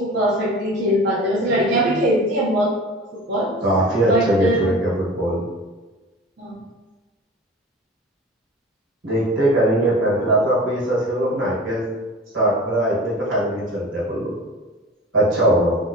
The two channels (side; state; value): both; normal; correlation 0.38